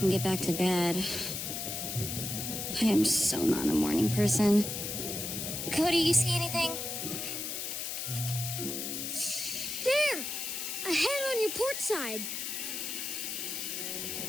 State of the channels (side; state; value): left; noise; hiss, 4 dB below the sound